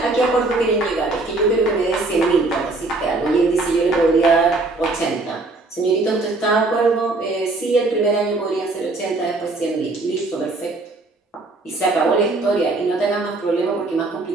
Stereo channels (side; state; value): left; quieter; 3.2 dB